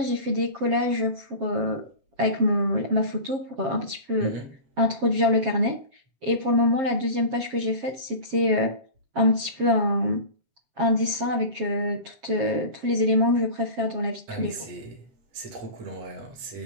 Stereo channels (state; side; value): late; left; 7.5 ms